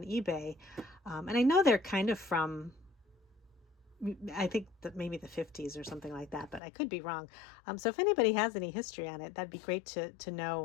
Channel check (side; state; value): right; drops out; at 6.6 s